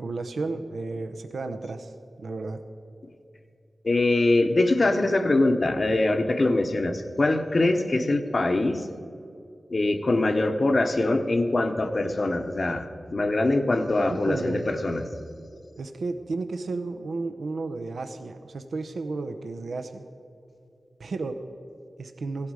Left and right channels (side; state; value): both; normal; correlation 0.96